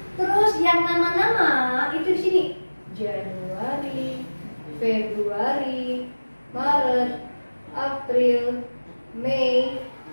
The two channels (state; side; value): inverted; both; correlation -1.00